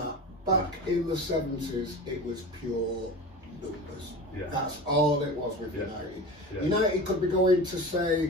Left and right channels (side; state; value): both; normal; correlation 0.31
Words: Back in the 70s, it was pure numbers. Yeah. That's all it was with United. Yeah. United could be going to